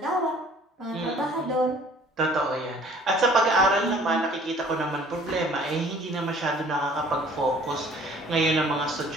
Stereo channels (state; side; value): normal; both; correlation 0.53